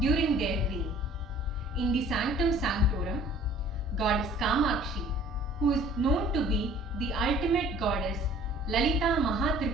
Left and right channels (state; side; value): normal; both; correlation 0.52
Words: their reign. In the Sanctum Sanctorum, Goddess Kamakshi, who is known to be the ultimate goddess Lalita